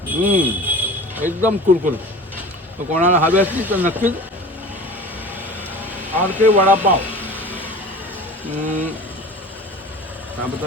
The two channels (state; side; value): normal; both; correlation 0.38